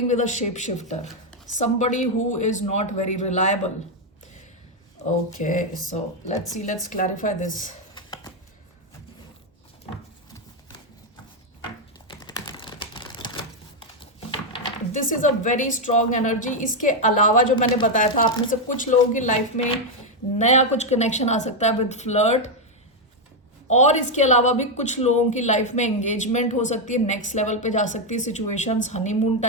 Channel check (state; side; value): normal; both; correlation 0.02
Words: with a shape shifter, somebody who is not very reliable. Okay, so let's clarify this. This is a very strong energy. इसके अलावा जो मैंने बताया था, आप में से कुछ लोगों की लाइफ में नया कुछ कनेक्शन आ सकता है विद फ्लर्ट, और इसके अलावा भी कुछ लोगों की लाइफ में एंगेजमेंट हो सकती है, नेक्स्ट लेवल पे जा सकती है सिचुएशंस, हनीमून